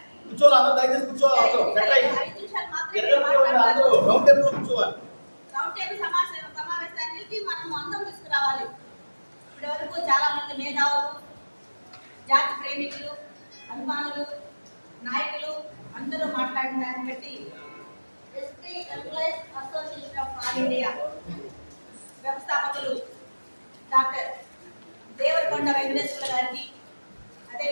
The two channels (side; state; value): both; inverted; correlation -1.00